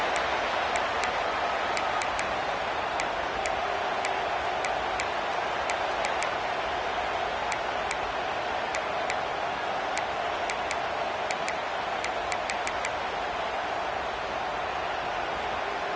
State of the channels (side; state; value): both; identical; correlation 1.00